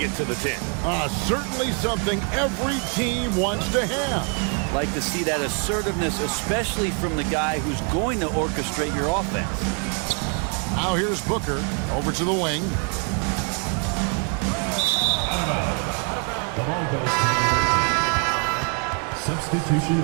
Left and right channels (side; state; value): left; quieter; 39.1 dB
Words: to the 10. Certainly something every team wants to have. Like to see that assertiveness, especially from the guy who's going to orchestrate your offense. Now here's Booker over to the wing. The ball goes to the away team. Substitution